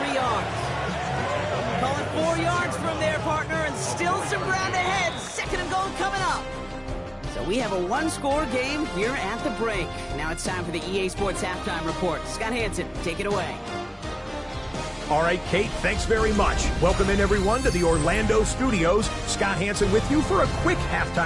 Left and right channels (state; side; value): identical; both; correlation 1.00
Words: yards. Call it 4 yards from there, partner, and still some ground ahead. 2nd and goal coming up. So we have a 1-score game here at the break. Now it's time for the EA Sports Halftime Report. Scott Hansen, take it away. All right, Kate, thanks very much. Welcome in, everyone, to the Orlando studios. Scott Hansen with you for a quick